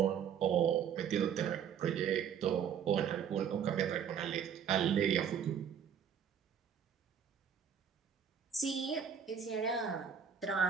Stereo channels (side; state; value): left; quieter; 8.0 dB